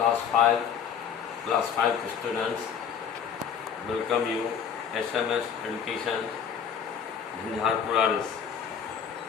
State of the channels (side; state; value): right; quieter; 7.6 dB